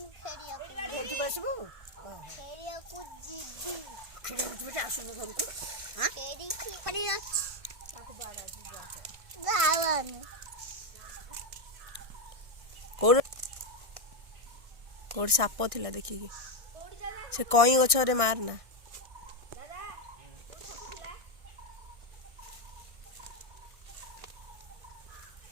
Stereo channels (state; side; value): late; left; 1.6 ms